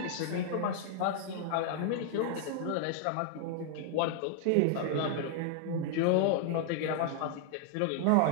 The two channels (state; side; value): different; both; correlation 0.00